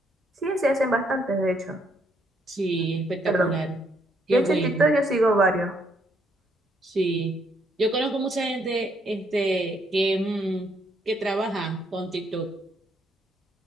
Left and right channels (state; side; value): normal; both; correlation 0.72